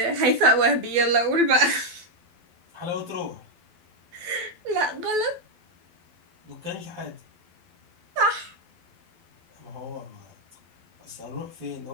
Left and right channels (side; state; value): left; late; 12 ms